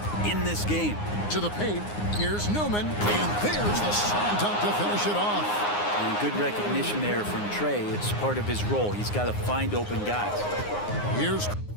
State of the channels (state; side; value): late; right; 9.7 ms